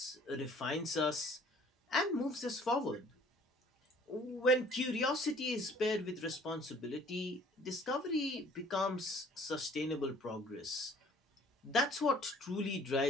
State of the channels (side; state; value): both; normal; correlation 0.54